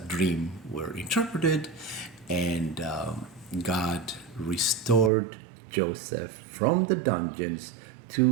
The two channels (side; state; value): left; drops out; at 5.1 s